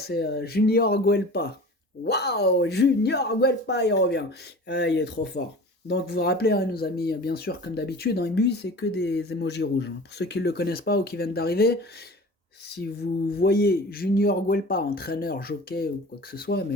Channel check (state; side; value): normal; both; correlation 0.39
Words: Junior Guelpa. Waouh, Junior Guelpa, il revient. Il est trop fort. Donc vous vous rappelez, il nous a mis, bien sûr, comme d'habitude, dans lui, c'est que des emojis rouges. Pour ceux qui ne le connaissent pas ou qui viennent d'arriver, si vous voyez Junior Guelpa, entraîneur, jockey ou quoi que ce soit,